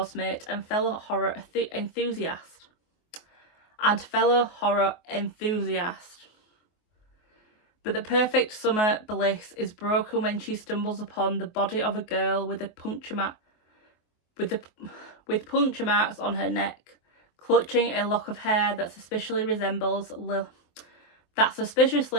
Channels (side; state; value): right; late; 23 ms